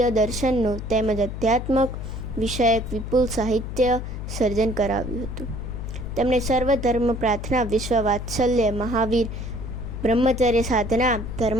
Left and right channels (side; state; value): left; noise; hum, 7 dB below the sound